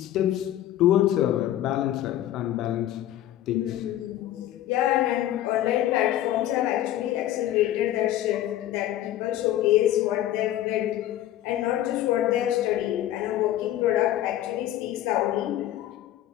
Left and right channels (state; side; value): quieter; right; 13.1 dB